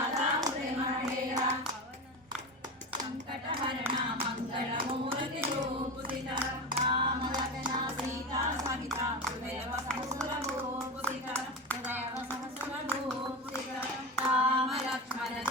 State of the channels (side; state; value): both; normal; correlation 0.23